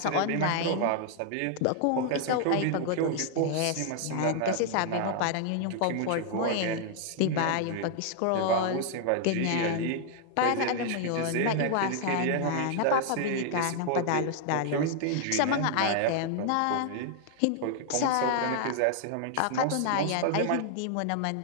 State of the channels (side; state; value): both; different; correlation 0.00